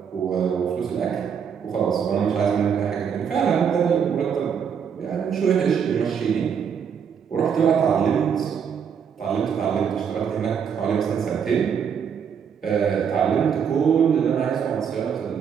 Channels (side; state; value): left; quieter; 7.3 dB